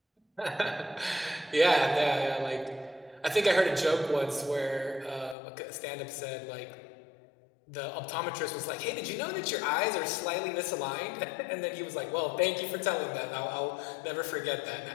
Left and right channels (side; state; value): right; drops out; at 5.4 s